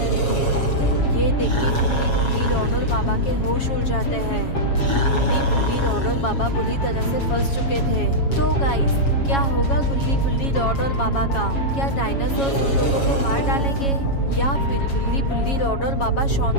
थे। ये देख के गुल्ली बुल्ली, रॉड और बाबा के होश उड़ जाते हैं। गुल्ली बुल्ली, रॉड और बाबा बुरी तरह से फंस चुके थे। तो गाइस, क्या होगा गुल्ली बुल्ली, रॉड और बाबा का? क्या डायनासोर उन लोगों को मार डालेंगे या फिर गुल्ली बुल्ली, रॉड और बाबा शॉन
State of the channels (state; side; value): late; right; 7.3 ms